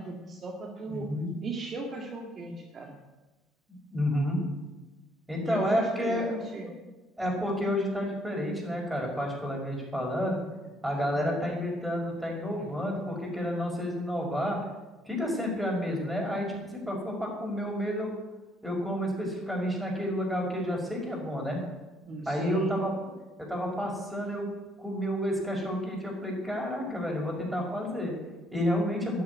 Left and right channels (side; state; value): both; normal; correlation 0.69